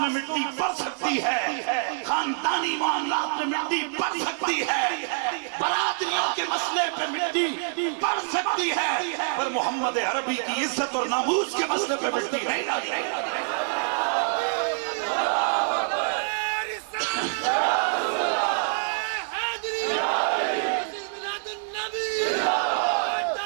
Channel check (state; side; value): silent; left; 61 dB below the other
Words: مٹی پڑ سکتی ہے، خاندانی معاملات میں مٹی پڑ سکتی ہے، برادریوں کے مسئلے پہ مٹی پڑ سکتی ہے، پر محمد عربی کی عزت اور ناموس کے مسئلے پہ مٹی نہیں ڈالی.